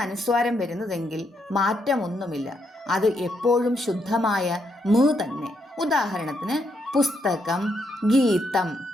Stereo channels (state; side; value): normal; both; correlation 0.77